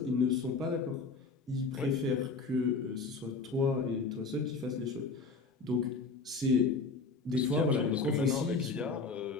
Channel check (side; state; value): right; quieter; 4.2 dB